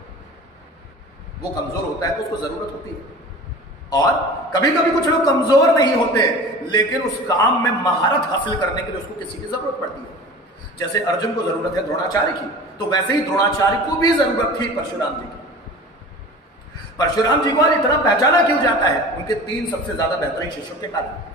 वो कमजोर होता है तो उसको जरूरत होती है। और कभी कभी कुछ लोग कमजोर नहीं होते, लेकिन उस काम में महारत हासिल करने के लिए उसको किसी की जरूरत पड़ती है। जैसे अर्जुन को जरूरत है द्रोणाचार्य की, तो वैसे ही द्रोणाचार्य को भी जरूरत थी परशुराम जी की। परशुराम जी को आज इतना पहचाना क्यों जाता है? उनके 3 सबसे ज्यादा बेहतरीन शिष्यों के कारण,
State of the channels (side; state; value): both; normal; correlation 0.39